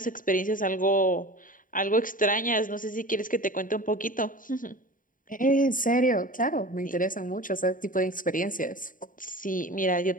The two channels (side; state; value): right; late; 0.39 ms